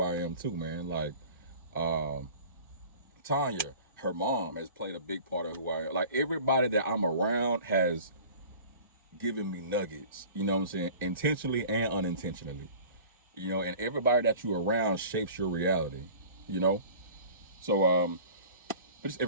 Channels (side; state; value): both; inverted; correlation -0.43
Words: I am too, man. Like, um, Tanya, her mom has played a big part of who I am. Like everybody that I'm around has given me nuggets, you know what I'm saying? Intentionally and unintentionally. You know, and everybody that you're around shapes your reality, you know? So but it's